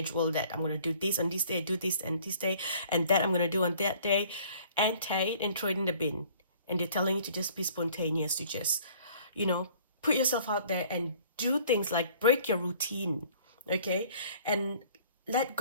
that I'm going to do this on this day, do this and this day, and that I'm going to do on that day, and tie it and throw it in the bin. And they're telling you to just be spontaneous, to just, put yourself out there and do things like break your routine, okay? And let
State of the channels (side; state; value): both; inverted; correlation -0.54